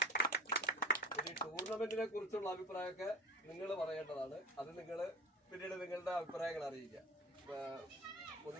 ഈ ടൂർണമെന്റിനെ കുറിച്ചുള്ള അഭിപ്രായമൊക്കെ നിങ്ങൾ പറയേണ്ടതാണ്. അത് നിങ്ങൾ പിന്നീട് നിങ്ങളുടെ അഭിപ്രായങ്ങൾ അറിയിക്കുക.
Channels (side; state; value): both; normal; correlation 0.37